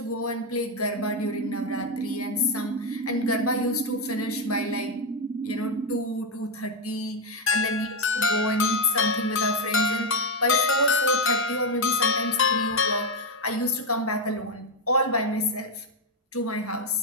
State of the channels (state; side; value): normal; both; correlation 0.06